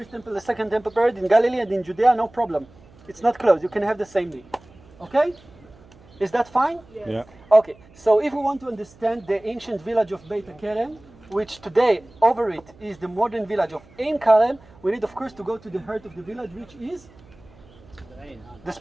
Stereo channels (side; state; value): right; noise; hum, 25 dB below the sound